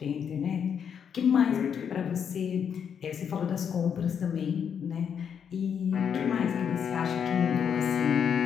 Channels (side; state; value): right; quieter; 7.6 dB